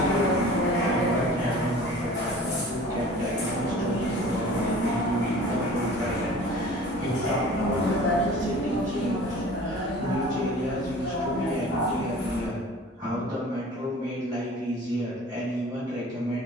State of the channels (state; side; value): normal; both; correlation 0.44